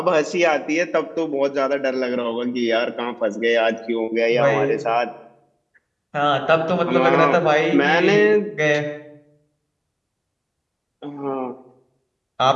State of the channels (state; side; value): identical; both; correlation 1.00